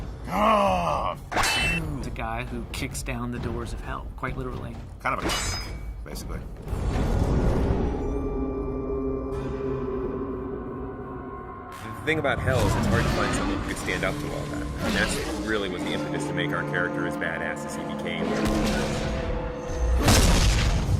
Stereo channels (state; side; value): identical; both; correlation 1.00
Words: ah! He's a guy who kicks down the doors of hell, quite literally. Kind of a cock, basically. The thing about hell is it's hard to find someone who could stand up to all that. And that's really what the impetus to make our character as badass as he became.